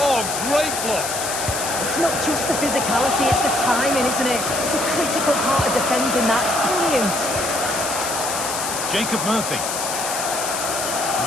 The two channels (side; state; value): left; noise; hiss, 4 dB below the sound